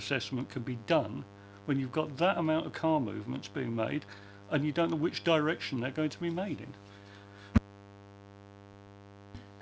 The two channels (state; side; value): identical; both; correlation 1.00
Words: can be done when you've got that amount of car movements being made and you don't know which direction they're going to be made